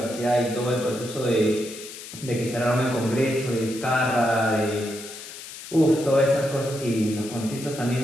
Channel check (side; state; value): left; noise; hiss, 13 dB below the sound